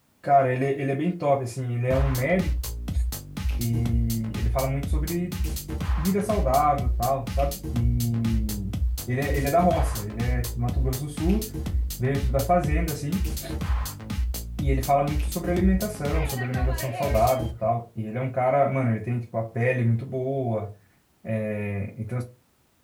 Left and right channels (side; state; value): both; identical; correlation 1.00